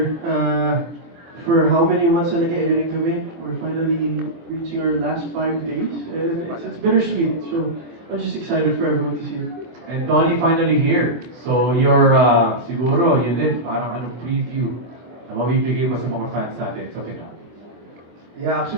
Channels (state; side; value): late; left; 24 ms